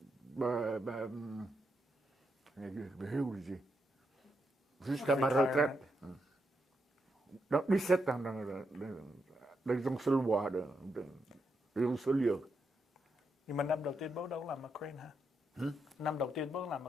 jusqu'à ma retraite. Donc 17 ans dans un seul bois, dans un seul lieu. Nhưng mà năm đầu tiên bố đâu làm ở Crane hả? Năm đầu tiên bố làm ở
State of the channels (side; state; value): both; normal; correlation 0.82